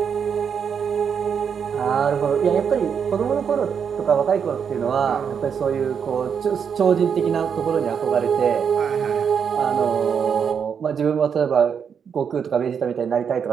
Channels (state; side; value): quieter; left; 7.1 dB